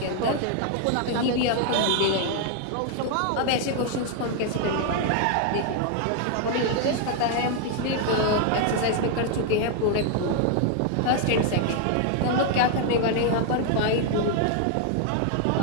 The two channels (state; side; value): different; both; correlation 0.00